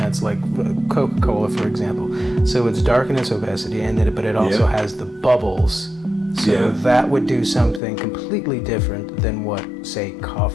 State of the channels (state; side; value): drops out; right; at 7.8 s